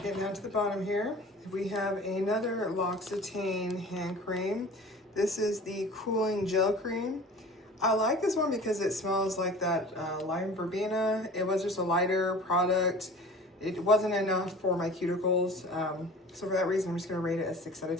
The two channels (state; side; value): normal; both; correlation 0.42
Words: down to the bottom here. We have another L'Occitane hand cream. This is the cooling gel cream. I like this one because it smells like that lime verbena. It was just a lighter product. It wasn't enough for my cuticles. So for that reason, I'm just gonna rate it a 6 out of